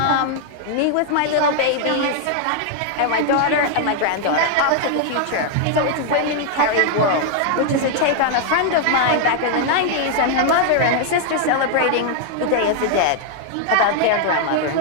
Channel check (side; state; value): both; different; correlation 0.00